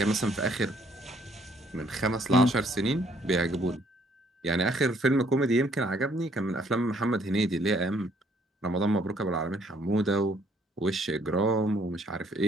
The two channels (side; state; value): both; normal; correlation 0.65